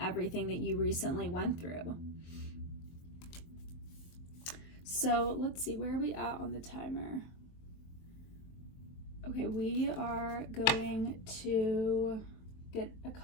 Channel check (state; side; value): late; right; 23 ms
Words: that you recently went through. So let's see, where are we at on the timer? Okay, we are going to get a